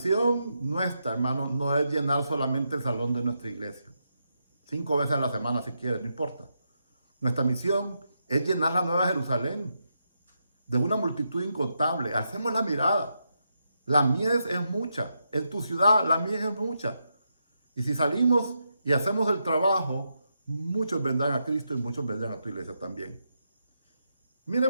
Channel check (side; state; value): both; inverted; correlation -0.84